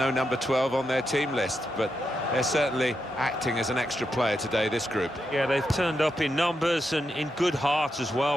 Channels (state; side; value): normal; both; correlation 0.85